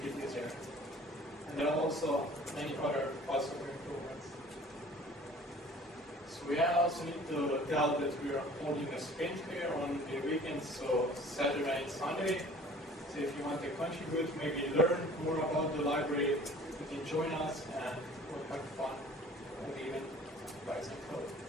it easier. And there are also many other possible improvements. So we also need to tell that we are holding a sprint here on the weekends, so Saturday and Sunday. So if you want to contribute, maybe learn more about the library, you can join us and we'll have fun and even write some code.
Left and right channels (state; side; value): normal; both; correlation 0.48